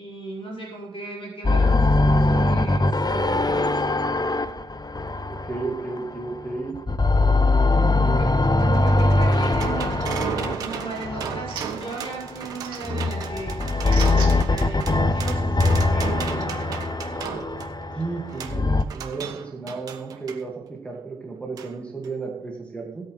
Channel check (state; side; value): normal; both; correlation 0.81